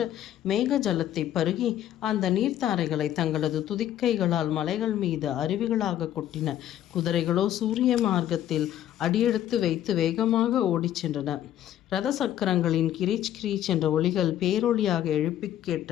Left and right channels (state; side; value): quieter; right; 11.8 dB